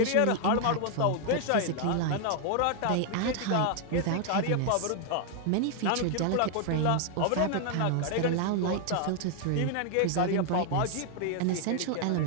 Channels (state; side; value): different; both; correlation 0.00